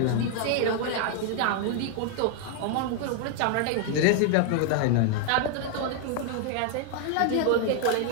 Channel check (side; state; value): both; different; correlation 0.00